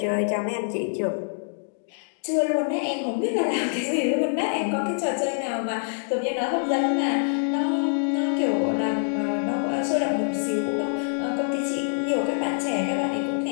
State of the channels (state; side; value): silent; right; digital silence